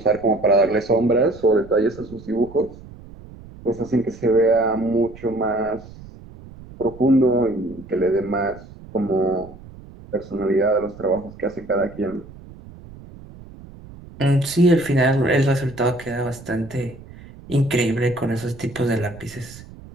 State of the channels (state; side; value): noise; right; rumble, 18 dB below the sound